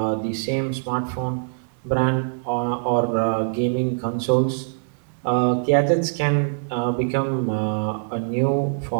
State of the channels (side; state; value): left; silent; digital silence